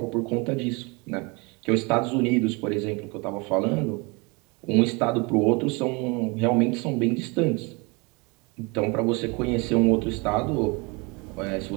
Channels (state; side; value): quieter; left; 28.7 dB